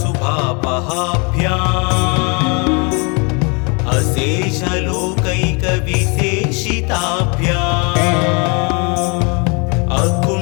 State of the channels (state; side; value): quieter; right; 32.1 dB